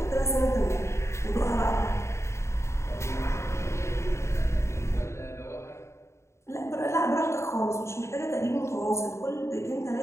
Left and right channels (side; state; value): right; late; 0.13 ms